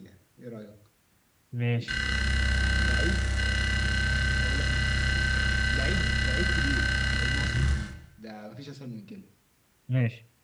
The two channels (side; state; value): both; identical; correlation 1.00